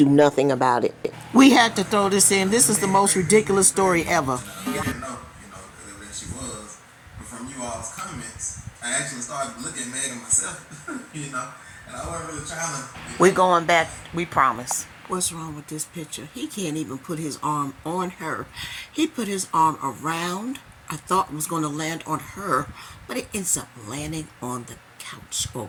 nothing about it. We had to throw this in. This is the most ridiculous story ever. I didn't know, because evidently she was. But from you all's comments, I actually started looking at Megan myself, and I wasn't really trying to. We're going back, we promise. What's wrong with this picture? He can't even put his arm on her. He put his arm around. I thought it was going to land on her, but it ends up landing on the couch or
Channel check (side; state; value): both; identical; correlation 1.00